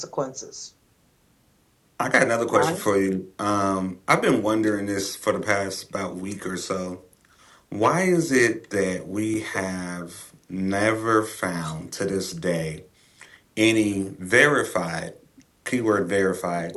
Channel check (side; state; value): both; identical; correlation 1.00